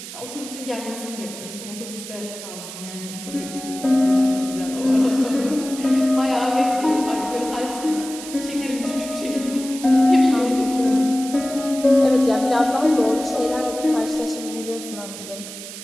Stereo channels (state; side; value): noise; right; hiss, 12 dB below the sound